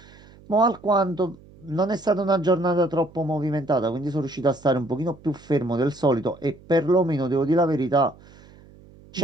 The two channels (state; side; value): noise; right; hum, 24 dB below the sound